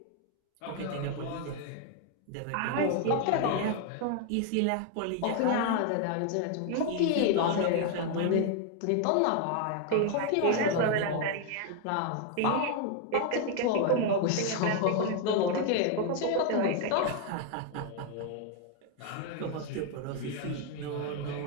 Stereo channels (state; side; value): different; both; correlation 0.00